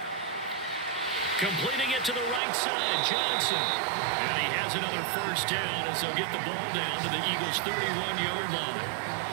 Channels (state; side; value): drops out; left; at 2.4 s